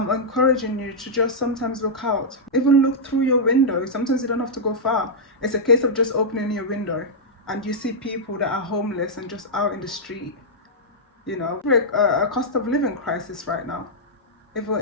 encouraging you to just sometimes look out. Even look through your window. Sometimes you don't have to go far. It's a case of just opening your window and you see people that are homeless and just out in the street. You know, a cost of living crisis right now.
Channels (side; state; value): both; normal; correlation -0.08